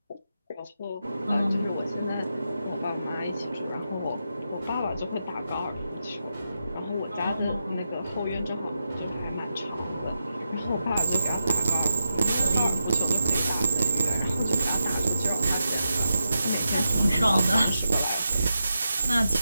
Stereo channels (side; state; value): both; inverted; correlation -0.87